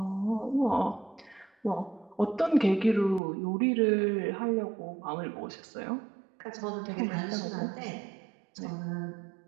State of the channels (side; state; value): left; drops out; at 3.2 s